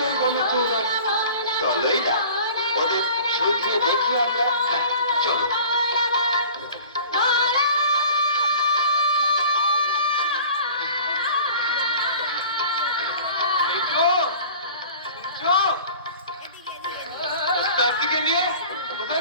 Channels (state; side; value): inverted; both; correlation -0.44